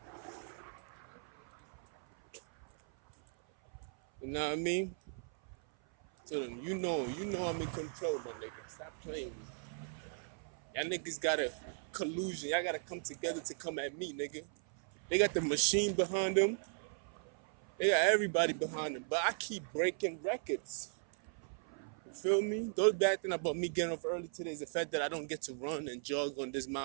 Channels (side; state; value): left; silent; 53 dB below the other